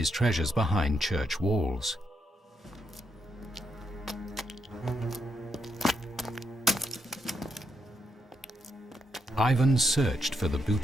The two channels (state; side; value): normal; both; correlation 0.80